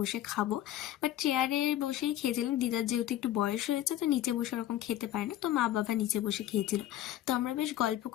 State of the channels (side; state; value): right; quieter; 12.8 dB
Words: খাবো, বাট চেয়ারে বসেই খেয়েছিলাম। দিদার যেহেতু একটু বয়স হয়েছে, তো নিচে বসে ওরকম খেতে পারে না, তো মা বাবা নিচে বসে খেয়েছিল। তো আমরা বেশ গল্প